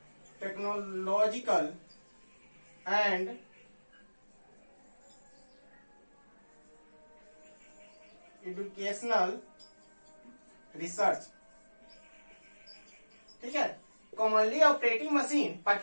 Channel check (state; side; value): inverted; both; correlation -1.00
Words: technological and educational research. ठीक है, commonly operating machine